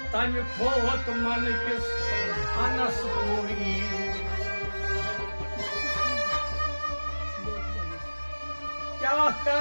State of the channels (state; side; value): inverted; both; correlation -1.00